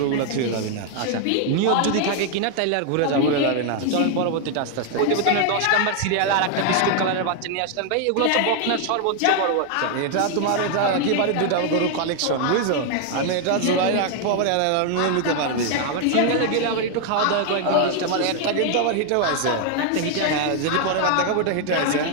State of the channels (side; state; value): both; different; correlation 0.00